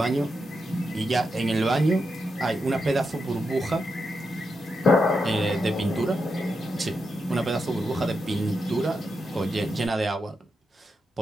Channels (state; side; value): normal; both; correlation 0.86